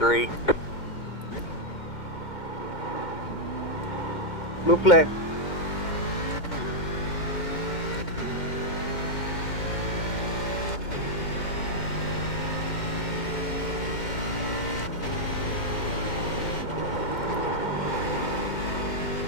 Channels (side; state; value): right; late; 2.1 ms